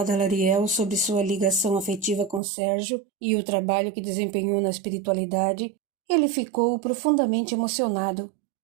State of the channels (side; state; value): left; drops out; at 2.4 s